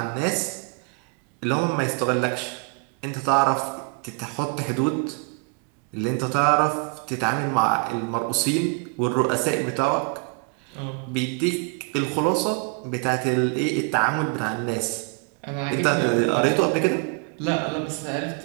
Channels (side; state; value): left; quieter; 33.7 dB